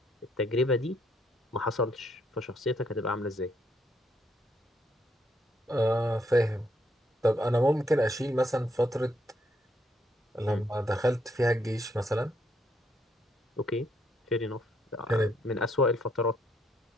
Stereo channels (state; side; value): normal; both; correlation 0.73